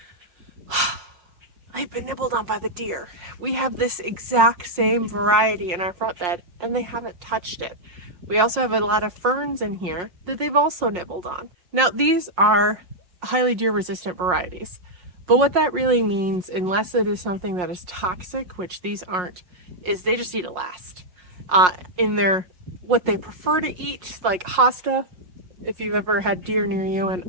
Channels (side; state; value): left; late; 5.6 ms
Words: They've been nibbled on by the deer. We have this exact same variety in our front bed and they haven't touched it. We also have a lot of ferns in here that they've also nibbled on. Now these are highly deer resistant varieties, but what that really means, unless it is something that is toxic, which these aren't, is they just need to last. In their, what they prefer to eat, like hosta, if you've ever had deer near you, and